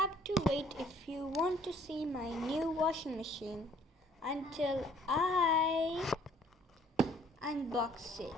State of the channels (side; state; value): both; normal; correlation 0.59